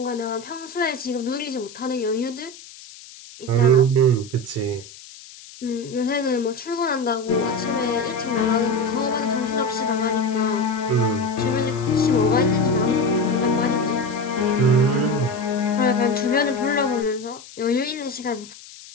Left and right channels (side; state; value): left; noise; hiss, 18 dB below the sound